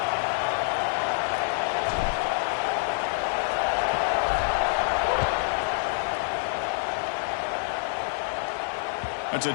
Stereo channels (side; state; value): right; silent; 60 dB below the other